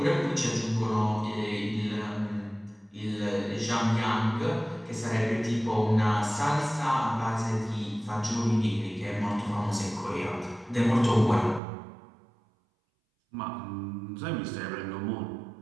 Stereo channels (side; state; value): left; drops out; at 11.6 s